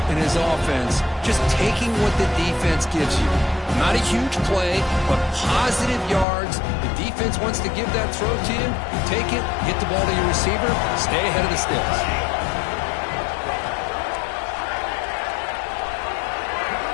and his offense just taking what the defense gives you. Not a huge play, but positive yards. The defense wants to give that throw to you. Take it, get the ball to your receiver, stay ahead of the sticks.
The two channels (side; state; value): right; drops out; at 6.2 s